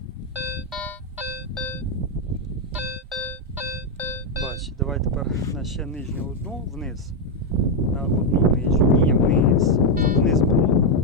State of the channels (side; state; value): both; normal; correlation 0.02